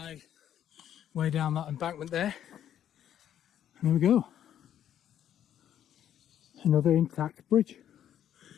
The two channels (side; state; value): right; quieter; 10.4 dB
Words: way down that embankment there. And there we go. Another intact bridge.